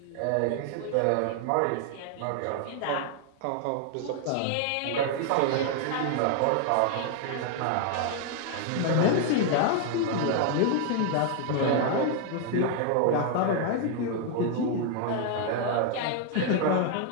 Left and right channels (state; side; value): different; both; correlation 0.00